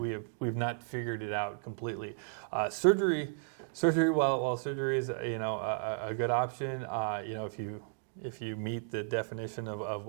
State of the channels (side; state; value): left; silent; digital silence